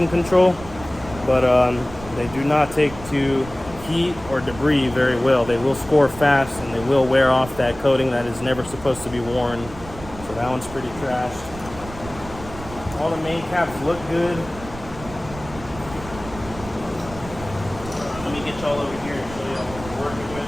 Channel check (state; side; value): noise; right; rumble, 14 dB below the sound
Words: control, but they do not take to heat or debris very well. They will score fast and they will wear off that coating that is never supposed to be worn. So that one's pretty trashed. All the main caps look good. Let me get y'all over here and show y'all what we're working with.